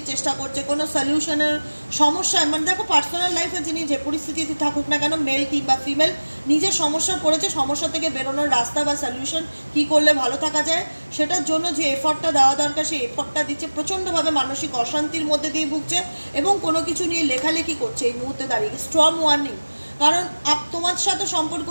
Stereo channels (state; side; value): inverted; both; correlation -1.00